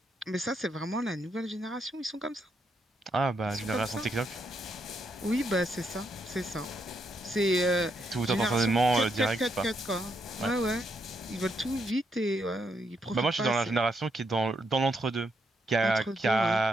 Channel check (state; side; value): normal; both; correlation 0.78